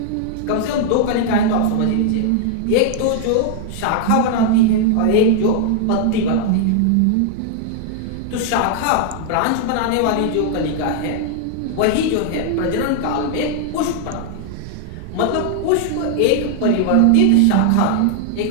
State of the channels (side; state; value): both; different; correlation -0.01